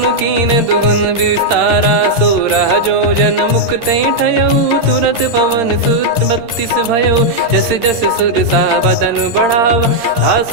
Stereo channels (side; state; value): left; late; 13 ms